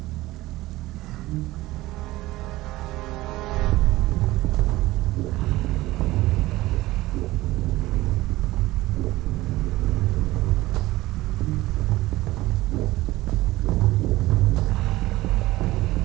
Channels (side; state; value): left; quieter; 17.9 dB